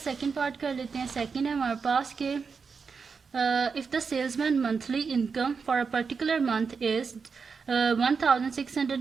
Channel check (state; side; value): quieter; left; 5.4 dB